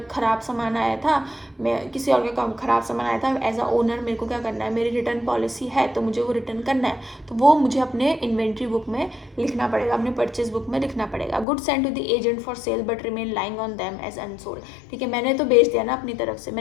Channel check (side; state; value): right; drops out; at 11.5 s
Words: ख़राब सामान आया था, मैं किसी और का ख़राब सामान आया था, एज अ ओनर मेरे को क्या करना है, मेरी रिटर्न पॉलिसी है तो मुझे वो रिटर्न करना है, तो वो मुझे अपने इन्वेंट्री बुक में लिखना पड़ेगा, अपने परचेज बुक में लिखना पड़ेगा। Good send to the agent for sale but remain lying on them as unsold. ठीक है, मैंने तो बेच दिया ना अपनी तरफ से,